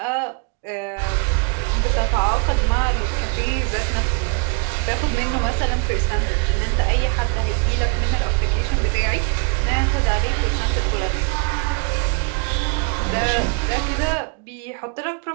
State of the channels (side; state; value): left; quieter; 35.1 dB